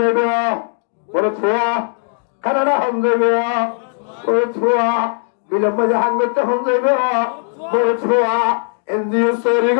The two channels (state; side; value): silent; right; digital silence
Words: মরদ ফোয়া কানাডা হন যাবে মরদ ফোয়া বিলম্ব জাহান করতে হন যাবে মরদ ফোয়া এনজিও সরি